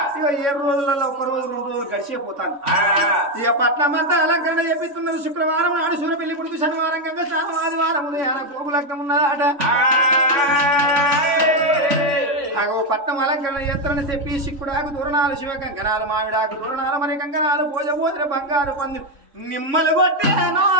ఇక 7 రోజులలో 1 రోజు 2 రోజులు గడిచిపోతాను. ఇక పట్నం అంతా అలంకరణ చేపిస్తున్నది. శుక్రవారం నాడు సూర్య పెళ్లి కొడుకు, శనివారం గంగ, ఆదివారం ఉదయాన కోపు లగ్నం ఉన్నదాట. అగో పట్నం అలంకరణ ఎత్తరని చెప్పి సిక్కుడాకు దూరణాలు శివ కంకణాలు మామిడాకు దూరణాలు మరి కంకణాలు పూజ పోతున్న బంగారు పందులు నిమ్మలు కొట్టే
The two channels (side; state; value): left; late; 3.5 ms